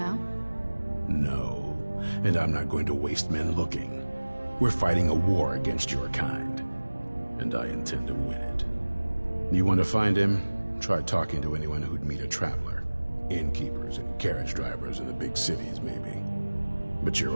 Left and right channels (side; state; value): both; inverted; correlation -1.00